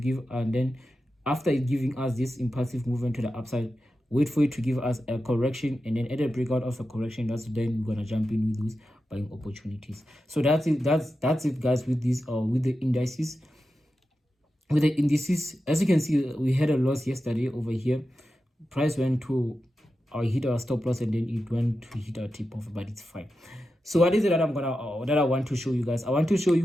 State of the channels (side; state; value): both; normal; correlation 0.91